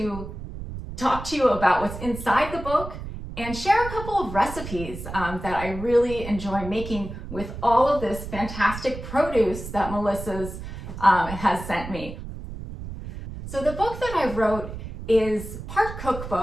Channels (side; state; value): right; noise; rumble, 10 dB below the sound